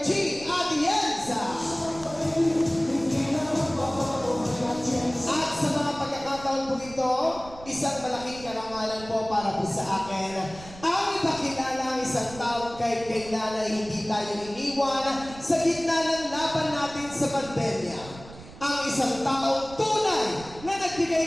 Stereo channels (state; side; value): noise; right; rumble, 17 dB below the sound